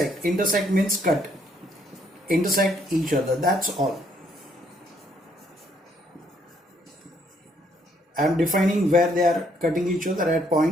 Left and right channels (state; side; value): normal; both; correlation 0.69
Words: Intersect means cut. Intersect each other. That's all. I am defining where they are cutting each other at